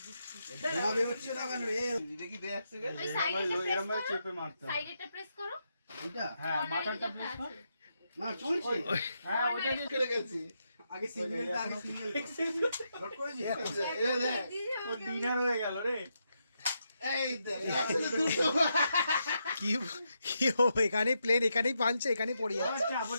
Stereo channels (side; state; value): both; inverted; correlation -0.83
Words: ধোঁয়া বেরোচ্ছে না কেন রে? দেখি দে এক সেকেন্ড। ওই সাইডেটা প্রেস এরকম করো চেপে মারতে হবে। সাইডেটা প্রেস করো ওইটা? হ্যাঁ মাথাটা প্রেস কর না চলছে। হ্যাঁ ওইটা দিয়ে কেটে গেছি। আগে সিঙ্গেলটা আগে সিঙ্গেল। নোট করেছিস? এই দেখ। ও ডিনার হয়ে গেল রে এই দেখ। আসলে দুটো। কি কি হবে এখানে প্লেন এখানেই পাঞ্চে এখানেই পড়ে আবার যাচ্ছে চাপ